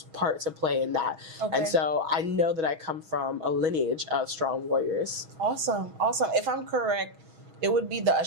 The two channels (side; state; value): left; late; 6.3 ms